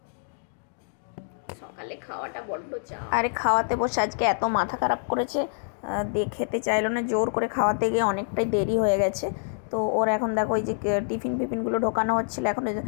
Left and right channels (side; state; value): right; silent; digital silence